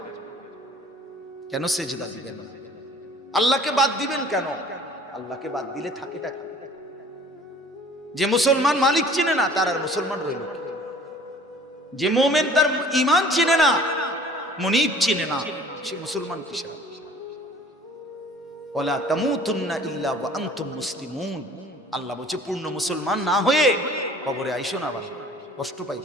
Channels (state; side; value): normal; both; correlation 0.50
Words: কেন সেজদা দিবেন, আল্লাহকে বাদ দিবেন কেন? আল্লাহকে বাদ দিলে থাকেটা কি? যে মুসলমান মালিক চিনে না, তার আর মুসলমান রইল কি? যে মুমিন তার ঈমান চিনে না, মুনিব চিনে না, সে মুসলমান কিসের? ওয়ালা তামুতুন্না ইল্লা ওয়া আনতুম মুসলিমুন। আল্লাহ বলছে, পূর্ণ মুসলমান না হয়ে কবরে আইসো না, বাবা, কষ্ট পাই,